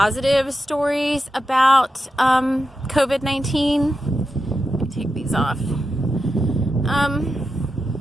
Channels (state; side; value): normal; both; correlation 0.89